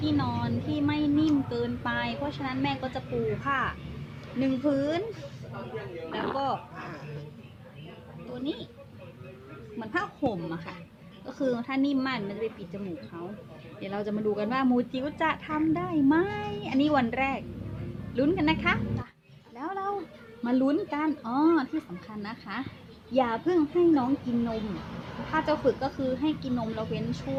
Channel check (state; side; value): identical; both; correlation 1.00